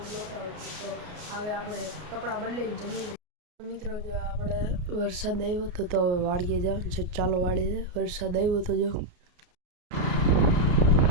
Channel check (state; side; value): late; left; 33 ms